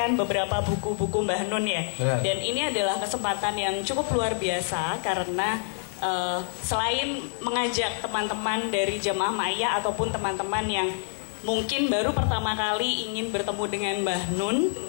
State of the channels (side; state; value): right; silent; digital silence